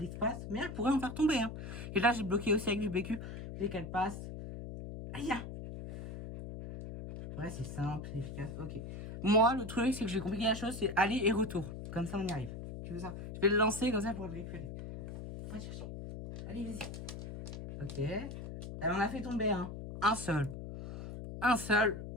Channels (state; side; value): noise; left; hum, 9 dB below the sound